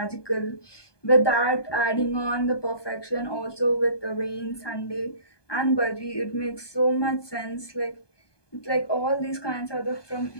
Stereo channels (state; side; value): late; right; 1.2 ms